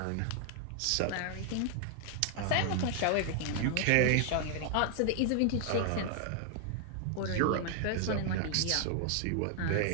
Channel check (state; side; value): different; both; correlation 0.00